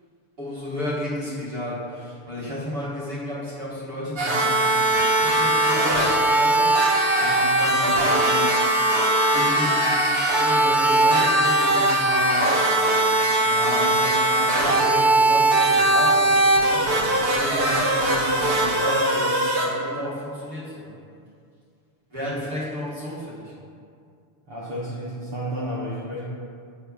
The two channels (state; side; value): late; left; 6.9 ms